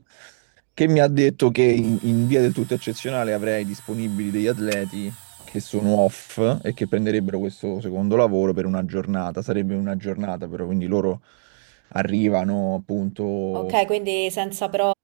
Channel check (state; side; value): silent; left; digital silence